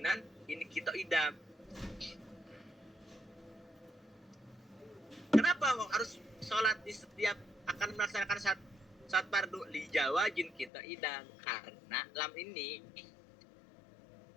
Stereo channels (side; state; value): right; drops out; at 10.7 s